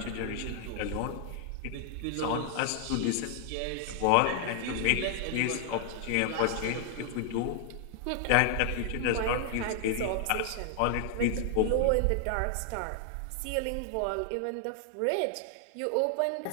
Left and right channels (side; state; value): both; different; correlation 0.00